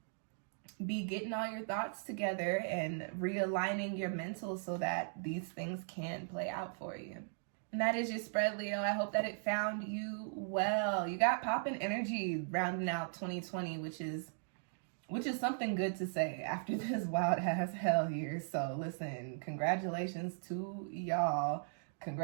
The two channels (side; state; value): left; silent; digital silence